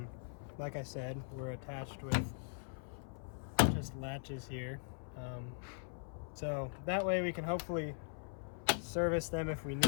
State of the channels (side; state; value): right; silent; 51 dB below the other